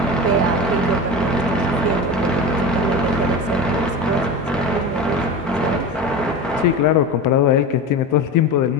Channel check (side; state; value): both; normal; correlation 0.27